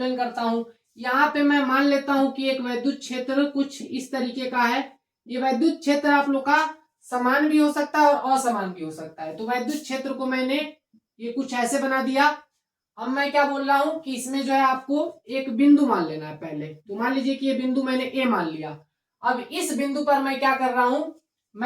करता हूं। यहाँ पे मैं मान लेता हूं कि एक वैद्युत क्षेत्र कुछ इस तरीके का है। ये वैद्युत क्षेत्र आप लोग का समान भी हो सकता है और असमान भी हो सकता है। तो वैद्युत क्षेत्र को मैंने ये कुछ ऐसे बना दिया। अब मैं क्या बोल रहा हूं कि इसमें जो है आपको एक बिंदु मान लेना है पहले। तो मान लीजिए कि ये बिंदु मैंने ए मान लिया। अब इस बिंदु पर मैं क्या कर रहा हूं?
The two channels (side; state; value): both; identical; correlation 1.00